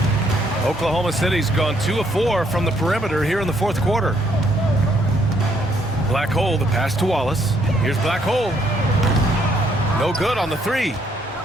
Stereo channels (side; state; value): both; normal; correlation 0.69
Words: Oklahoma City's gone 2 of 4 from the perimeter here in the fourth quarter. Black Hole, the pass to Wallace. Here's Black Hole. No good on the 3.